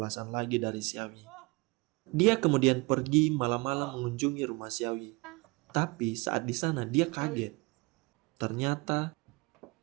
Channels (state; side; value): quieter; left; 26.2 dB